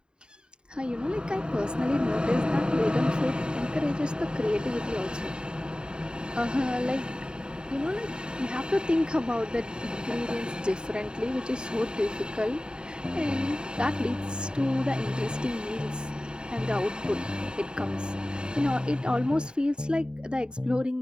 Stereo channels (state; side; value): late; left; 0.049 ms